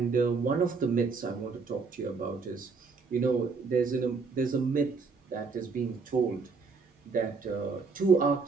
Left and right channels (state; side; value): quieter; left; 4.7 dB